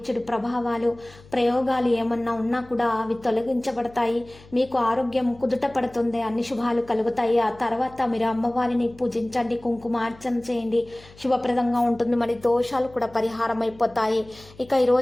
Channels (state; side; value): noise; left; hum, 23 dB below the sound